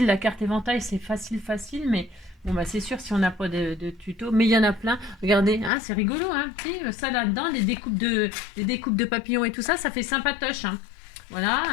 la carte éventail, c'est facile, mais bon, bah, c'est sûr si on n'a pas de tuto. Mais il y en a plein. Regardez, hein, c'est rigolo, hein. Ça là-dedans, les découpes de papillons et tout ça, ça fait sympatoche. Hein. Voilà,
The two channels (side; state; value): right; drops out; at 5.7 s